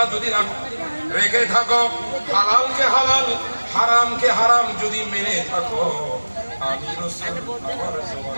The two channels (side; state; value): both; inverted; correlation -1.00